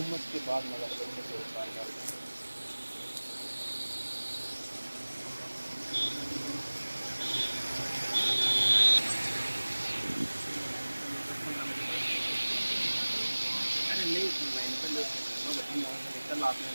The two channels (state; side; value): inverted; both; correlation -1.00